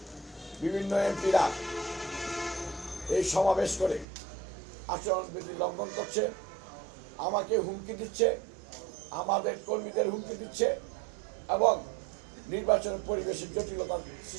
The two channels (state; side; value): drops out; left; at 4.0 s